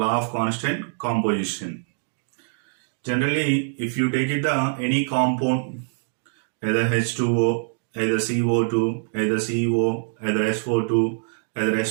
of constant composition. Generally, if you take it any compound, either H2O, either CO2, either CO, either SO2, either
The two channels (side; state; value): left; silent; digital silence